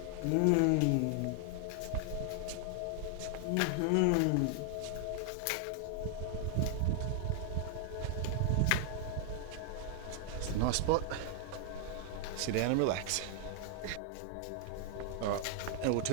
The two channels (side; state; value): both; different; correlation 0.00